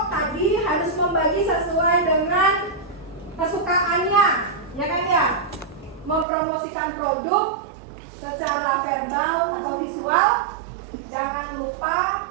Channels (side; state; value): left; drops out; at 6.2 s